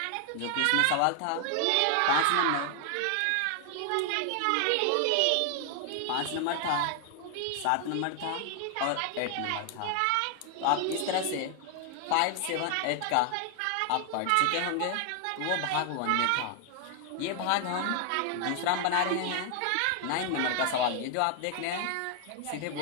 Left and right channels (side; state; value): both; different; correlation 0.00